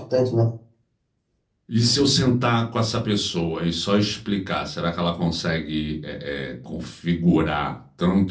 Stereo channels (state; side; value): identical; both; correlation 1.00